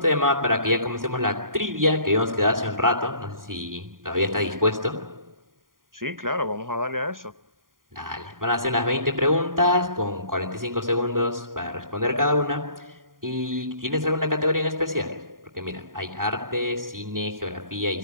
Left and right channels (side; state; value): left; late; 0.91 ms